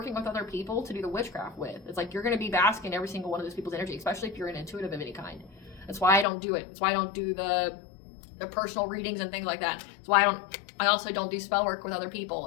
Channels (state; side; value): drops out; right; at 6.2 s